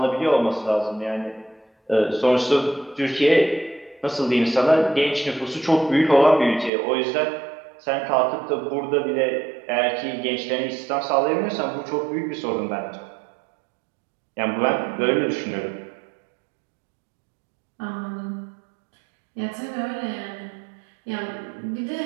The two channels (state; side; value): drops out; left; at 6.7 s